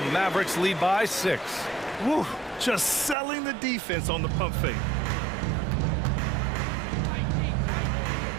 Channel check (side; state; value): left; drops out; at 3.2 s